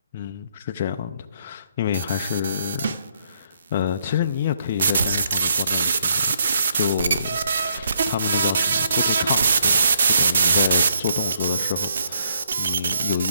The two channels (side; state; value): both; inverted; correlation -0.72